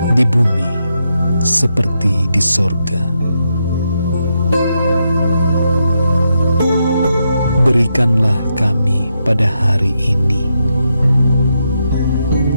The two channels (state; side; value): inverted; both; correlation -0.82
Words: di bumi seperti di sorga. Berikanlah kami pada hari ini